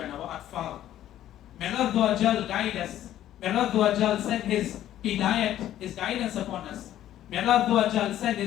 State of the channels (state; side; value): quieter; right; 12.4 dB